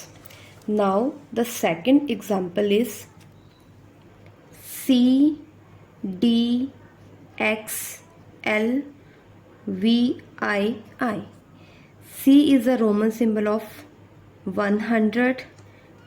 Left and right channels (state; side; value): identical; both; correlation 1.00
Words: Now the second example is C, D, X, L, V, I. C is a Roman symbol of 100,